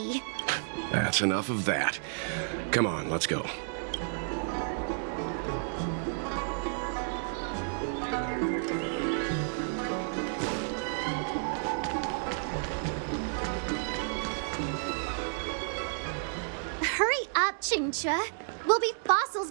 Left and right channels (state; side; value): silent; left; digital silence